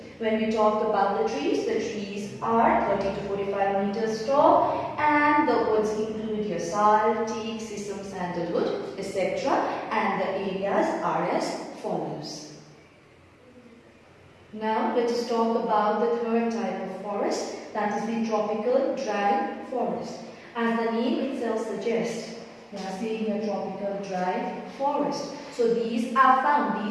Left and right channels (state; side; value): identical; both; correlation 1.00